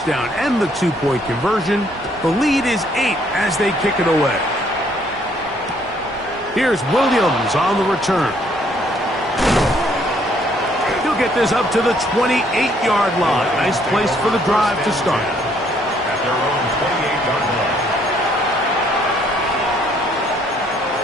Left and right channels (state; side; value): normal; both; correlation 0.66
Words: and the 2-point conversion, the lead is 8 as they kick it away. Here's Williams on the return. He'll get this up to the 28-yard line. Nice place for the drive to start. At their own 28-yard line.